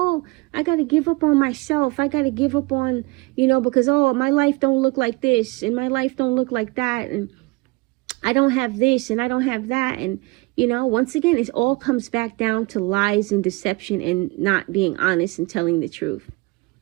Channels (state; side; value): quieter; left; 24.5 dB